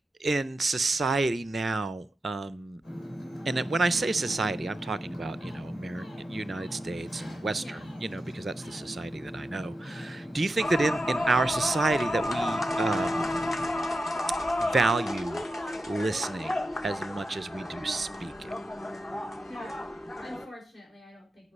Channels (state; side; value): normal; both; correlation 0.90